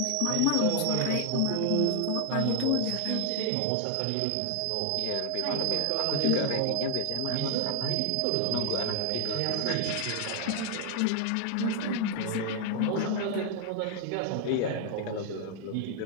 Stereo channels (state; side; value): different; both; correlation 0.00